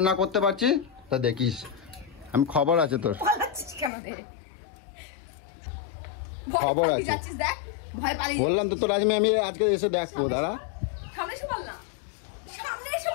না করতে পারছি তা দেখিস, আমি খবর আছে তোর। কেন রে? খবর আছে। যাচ্ছিস দেখ, ভয় পালিয়ে বললাম তো তোর আমি আজকে এসে দেখবো, দাঁড়া। সামনে এসে বল না, সামনে এসে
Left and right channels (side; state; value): right; drops out; at 3.9 s